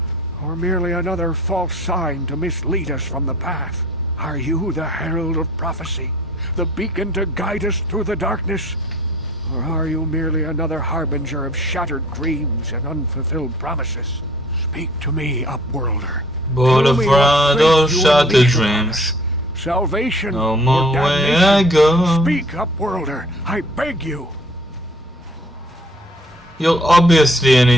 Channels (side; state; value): both; normal; correlation 0.53